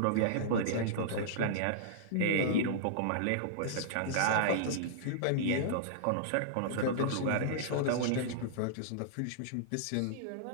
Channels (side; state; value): both; different; correlation -0.02